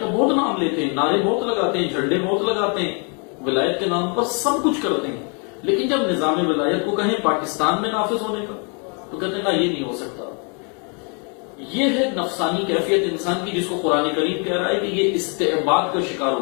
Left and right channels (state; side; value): quieter; right; 37.0 dB